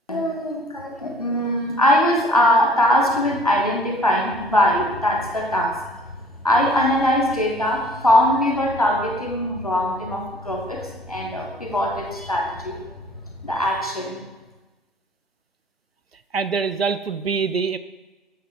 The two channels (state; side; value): normal; both; correlation 0.55